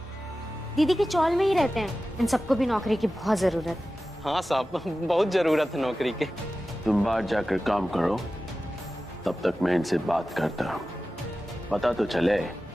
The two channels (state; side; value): normal; both; correlation 0.95